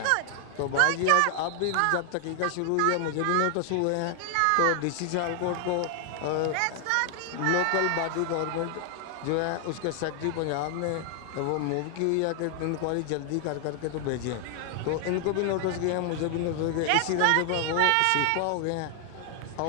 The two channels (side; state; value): both; different; correlation 0.00